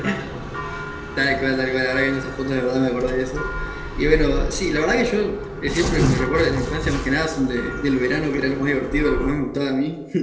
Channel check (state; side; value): identical; both; correlation 1.00